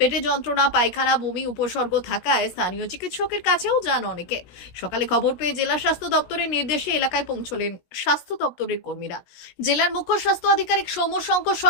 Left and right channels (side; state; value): right; late; 16 ms